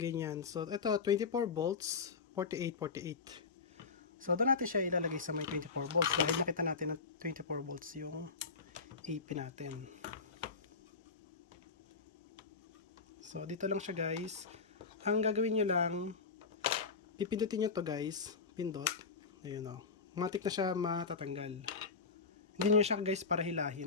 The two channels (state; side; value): quieter; right; 4.8 dB